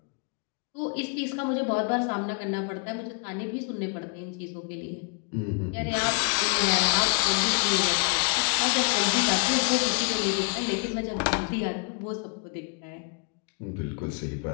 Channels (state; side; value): quieter; right; 37.1 dB